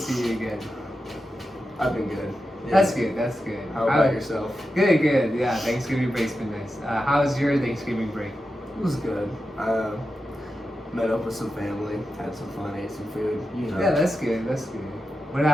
you again. I've been good. Yeah. That's good, that's good. How about yourself? Good, good. Yeah, Thanksgiving break's been nice. How was your Thanksgiving break? It was good. Met up with some family, had some fun, ate some food, you know. Yeah, that's good, that's good.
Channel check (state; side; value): normal; both; correlation 0.90